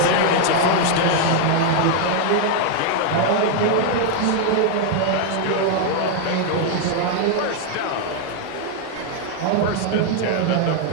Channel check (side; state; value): both; different; correlation 0.00